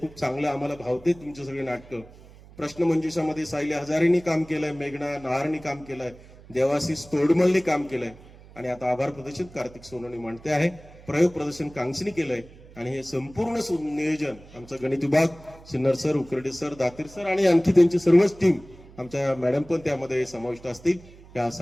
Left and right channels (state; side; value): noise; right; hum, 21 dB below the sound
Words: चांगलं आम्हाला भावते तुमचे सगळे नाटकं. प्रश्नमंजुषामध्ये सायली हजारेंनी काम केलंय, मेघना नहारनी काम केलंय, देवाशिष तोडमलनी काम केलंय आणि आता आभार प्रदर्शन कार्तिक सोनवणे मांडते आहे. प्रयोग प्रदर्शन कांक्षनी केलंय आणि हे संपूर्ण नियोजन आमचा गणित विभाग Sinnar sir, Ukarde sir, Datir sir आणि आणखी त्यांची सर्वच टीम, आमच्या मॅडम पण त्यामध्ये समाविष्ट असतील. या